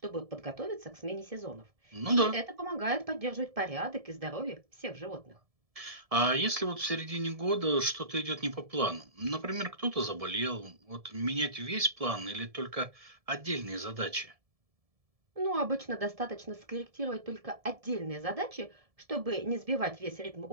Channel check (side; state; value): left; late; 1.7 ms